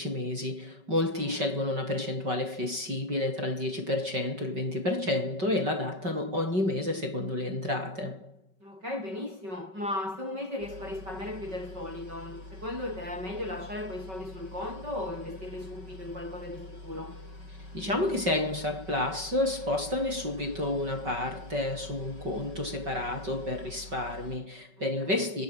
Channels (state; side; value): late; left; 5.3 ms